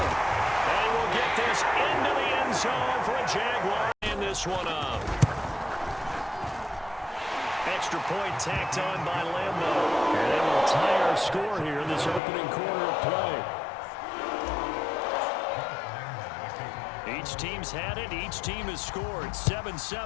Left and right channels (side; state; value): right; drops out; at 12.2 s